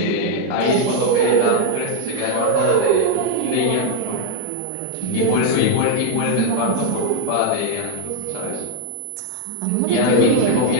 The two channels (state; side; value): different; both; correlation 0.00